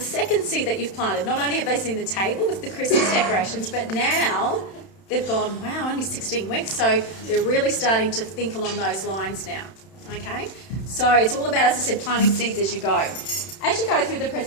second seed that you've planted. Not only have they seen the table with the Christmas decorations, but now they've gone, wow, only 16 weeks. So they're really starting to think along those lines now, okay? So it's all about, as I said, planting seeds as you go. As you go through the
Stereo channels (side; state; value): right; late; 31 ms